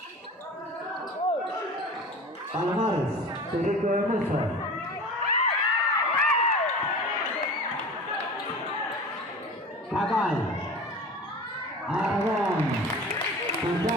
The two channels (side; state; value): both; normal; correlation 0.36